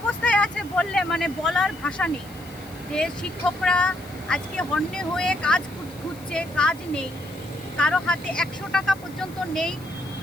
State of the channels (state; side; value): noise; left; hiss, 22 dB below the sound